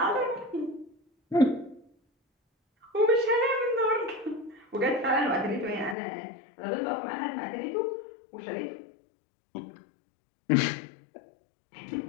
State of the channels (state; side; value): drops out; right; at 6.0 s